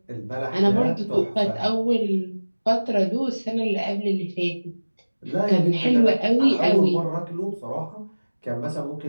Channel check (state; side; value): inverted; both; correlation -1.00